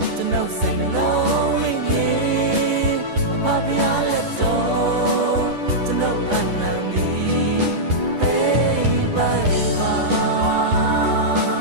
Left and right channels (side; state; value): left; late; 10 ms